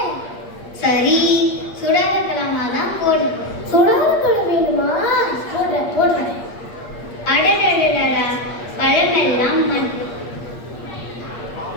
சரி, சுடாத பழமா தான் போடு. சுடாத பழம் வேணுமா? போடுறேன். அடடடடா, பழமெல்லாம் மண்.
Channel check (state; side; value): late; right; 8.5 ms